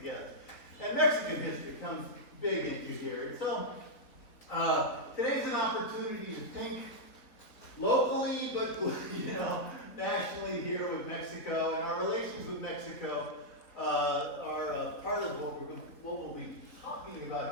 And Mexican history comes big into here. And so today's an opportunity to think locally, but nationally here with Mexico, and our relations with Mexico are part of what we'll be talking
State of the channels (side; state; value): right; late; 4.2 ms